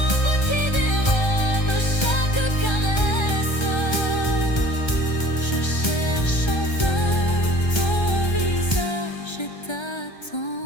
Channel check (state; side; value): late; right; 1.3 ms